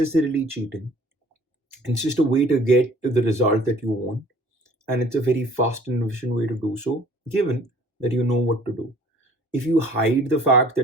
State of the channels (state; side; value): normal; both; correlation 0.53